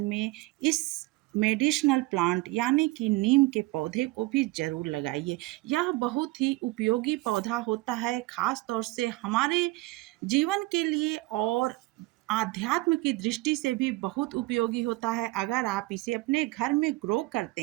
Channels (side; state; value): left; quieter; 20.9 dB